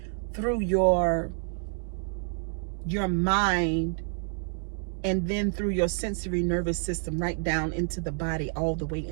through your mind, and then through your sensory nervous system right down into the body, all the way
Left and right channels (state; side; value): silent; left; digital silence